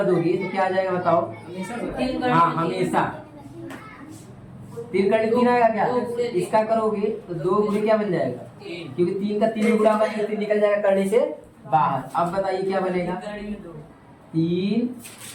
दोगे तो क्या आ जाएगा बताओ, हाँ हमेशा 3 करणी 3 आएगा क्या, इसका करोगे तो 2 गुणे क्या बन जाएगा, क्योंकि 3 का 3 गुणा होगा, 3 निकल जाएगा करणी से बाहर। अब बताइए क्या बनेगा, 3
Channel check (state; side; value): identical; both; correlation 1.00